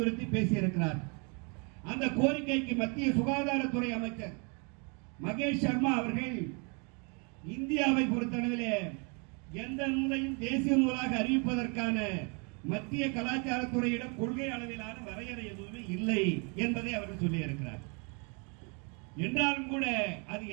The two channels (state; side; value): quieter; left; 34.9 dB